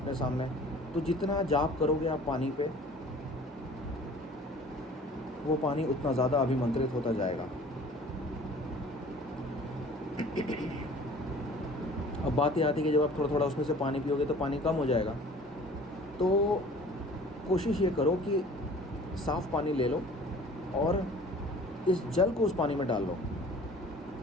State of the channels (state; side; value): normal; both; correlation 0.48